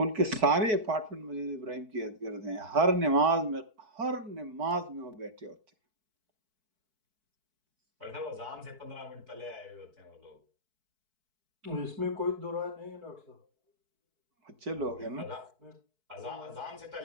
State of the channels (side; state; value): left; late; 4.6 ms